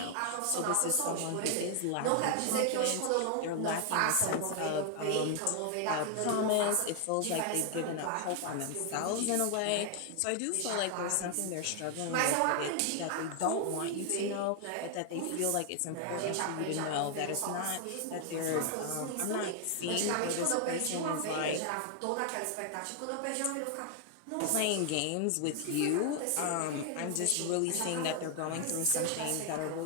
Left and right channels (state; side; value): different; both; correlation 0.00